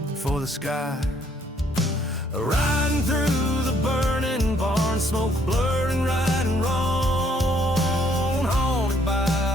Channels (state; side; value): normal; both; correlation 0.66